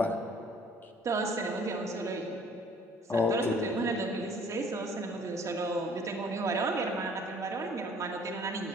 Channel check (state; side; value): normal; both; correlation 0.56